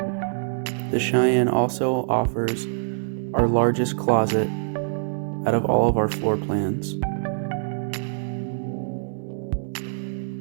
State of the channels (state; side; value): silent; left; 62 dB below the other